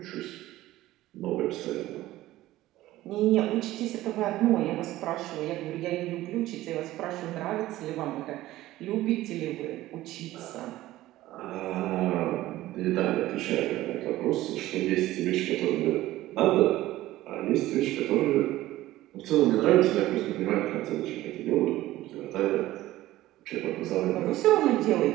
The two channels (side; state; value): left; quieter; 15.9 dB